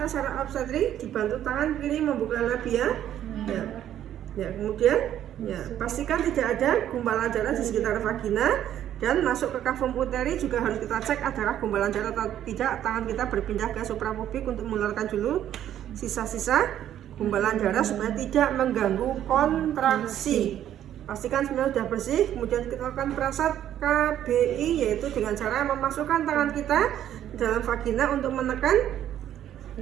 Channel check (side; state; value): left; quieter; 11.1 dB